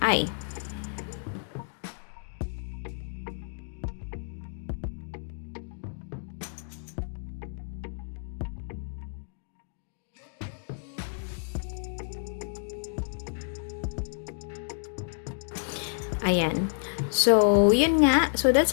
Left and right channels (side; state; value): right; silent; digital silence